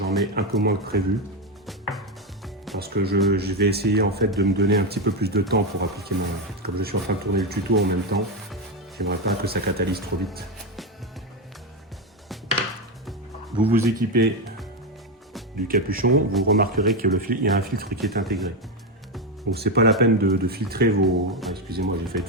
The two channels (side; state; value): both; normal; correlation 0.10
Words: mets un peu moins que prévu. Parce que je vais essayer en fait de me donner un petit peu plus de temps pour appliquer mon... Comme je suis en train de tourner le tuto en même temps, j'aimerais pas que ça catalyse trop vite. Vous vous équipez du capuchon, vous remarquerez qu'il y a un filtre qui est intégré. Donc c'est pas la peine de filtrer vos... Ah, excusez-moi, j'ai failli